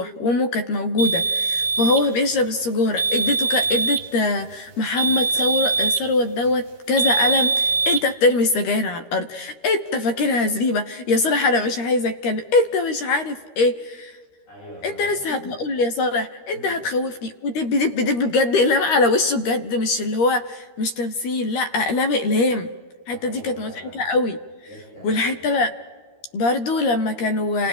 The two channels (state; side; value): late; right; 13 ms